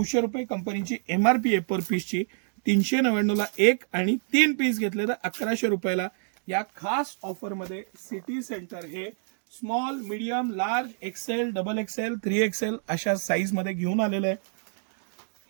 रुपये कंपनीची MRP आहे पर पीसची. 399ला 1 आणि 3 पीस घेतले तर 1100 रुपयाला. या खास ऑफरमध्ये सिटी सेंटर हे small, medium, large, XL, double XL, 3XL अशा साईज मध्ये घेऊन आलेलं आहे.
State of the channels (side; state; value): left; silent; digital silence